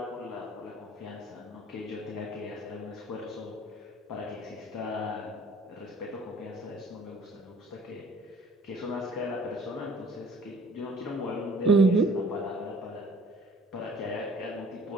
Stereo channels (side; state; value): both; normal; correlation 0.53